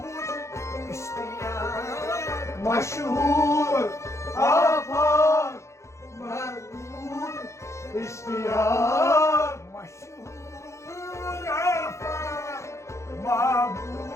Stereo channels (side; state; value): right; late; 0.14 ms